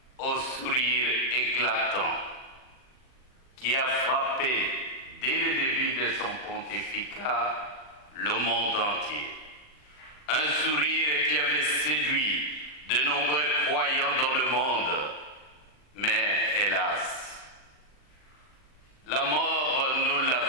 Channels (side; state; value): right; late; 39 ms